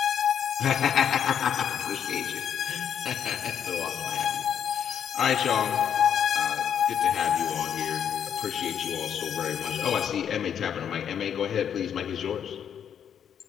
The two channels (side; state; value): right; quieter; 8.6 dB